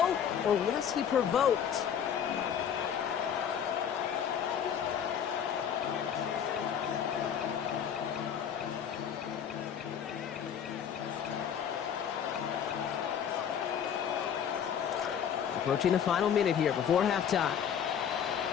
or was he provoked? Approaching the final minute here before halftime.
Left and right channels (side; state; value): right; quieter; 8.4 dB